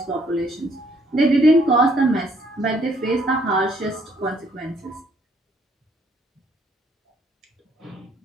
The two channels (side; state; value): both; normal; correlation 0.66